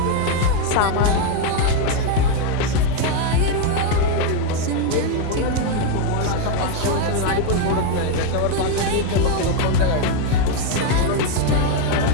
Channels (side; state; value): both; different; correlation 0.02